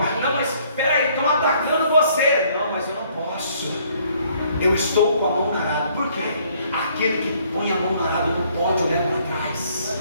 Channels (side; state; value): both; inverted; correlation -0.63